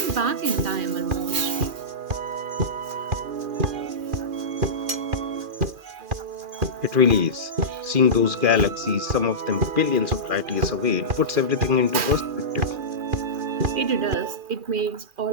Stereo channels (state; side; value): late; left; 2.4 ms